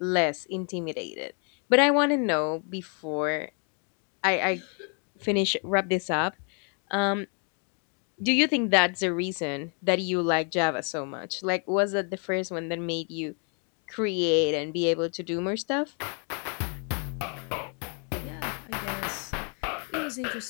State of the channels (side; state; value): right; quieter; 39.8 dB